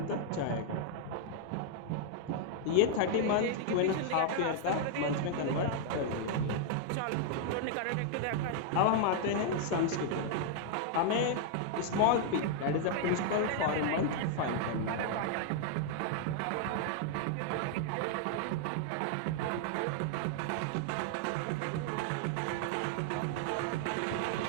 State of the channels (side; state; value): both; different; correlation 0.00